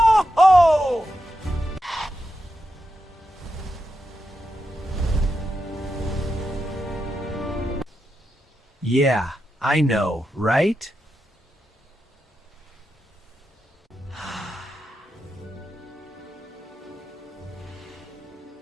ho! Yeah, I know, right?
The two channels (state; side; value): normal; both; correlation 0.87